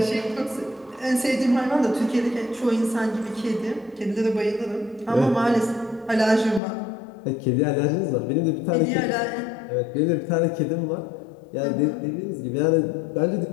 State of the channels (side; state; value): right; drops out; at 6.6 s